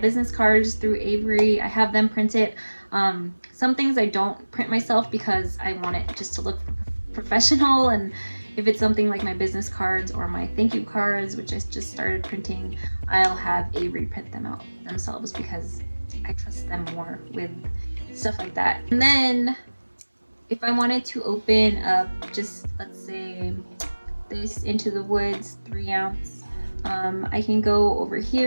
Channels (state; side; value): inverted; both; correlation -1.00